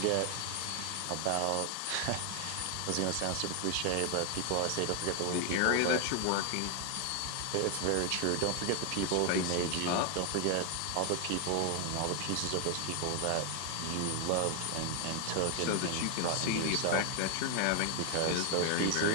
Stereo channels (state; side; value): different; both; correlation 0.00